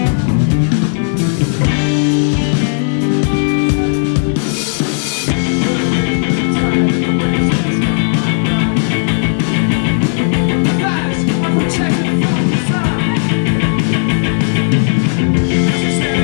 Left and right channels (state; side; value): silent; right; digital silence